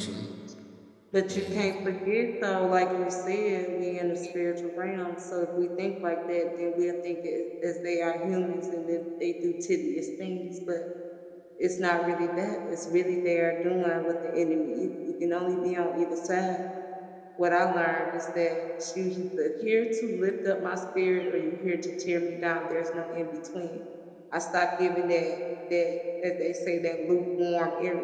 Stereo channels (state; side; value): identical; both; correlation 1.00